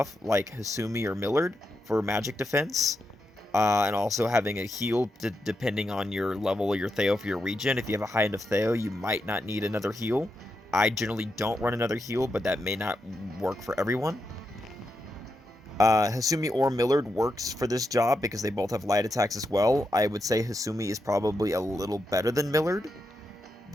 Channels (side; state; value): both; normal; correlation 0.85